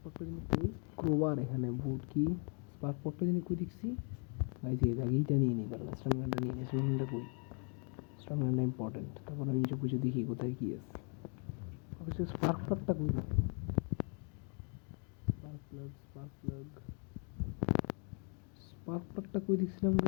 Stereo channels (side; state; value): right; quieter; 39.4 dB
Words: প্লাগটা যিনি কই ক্রোবার এখানে বোর্ড কি স্পার্ক প্লাগটা যিনি কই দেখছি গাইস এই জায়গাটা নিয়ে নিই কারণ স্ট্রংটা নিয়ে নিই স্ট্রংটা কই স্ট্রংটা ইম্পর্টেন্ট তারপর আমি নিচে পুজো দেখি কোথায় কি আছে অবশ্যই স্পার্ক প্লাগটা কই স্পার্ক প্লাগটা কই দেখছিলাম